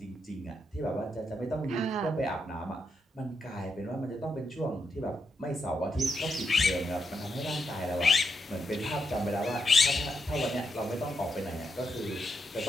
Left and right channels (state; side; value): normal; both; correlation 0.82